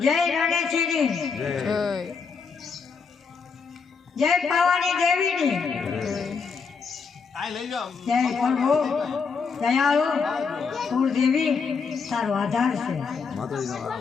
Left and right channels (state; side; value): quieter; right; 5.4 dB